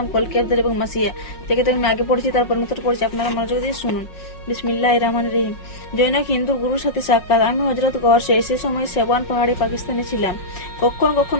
কলকি আব্দুল এবং মাসিয়া। থেকে আমি আগে পড়েছি, তারপর নতুন পড়েছি, আপনারা মনোযোগ দিয়ে শুনুন। বিসমিল্লাহির রহমানির রহিম। জৈনক হিন্দু গুরুর সাথে সাক্ষাৎ। আমি হযরত গরসে সে সময় সেবান পাহাড়ে পাকিস্তানে ছিলাম। কখনো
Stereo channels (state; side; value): late; right; 5.5 ms